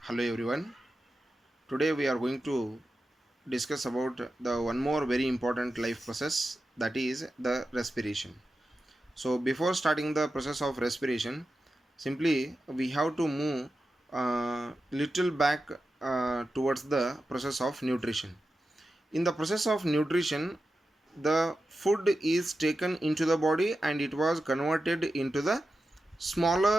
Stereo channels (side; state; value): both; normal; correlation 0.92